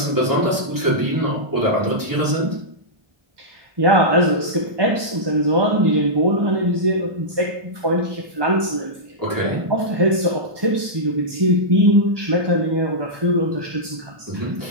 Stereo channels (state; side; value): late; left; 1.2 ms